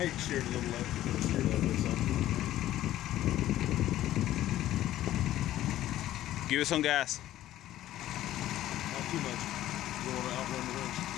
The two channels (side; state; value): right; quieter; 13.7 dB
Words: you can steer it a little left. You can steer left or something. Give it some gas. Not too much. You don't want to outrun the winch.